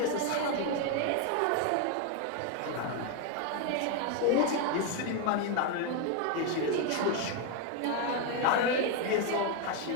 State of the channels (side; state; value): both; different; correlation 0.01